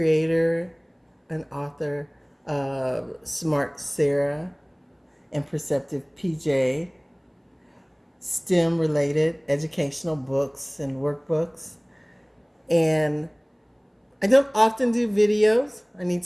and author of Smart Sarah and Perceptive PJ, STEM related educational books and workbooks. And I don't often do videos. I need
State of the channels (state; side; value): identical; both; correlation 1.00